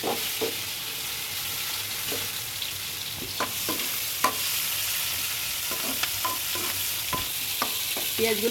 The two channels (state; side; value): identical; both; correlation 1.00